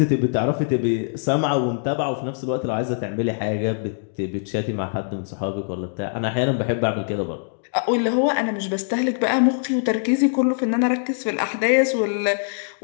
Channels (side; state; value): right; silent; digital silence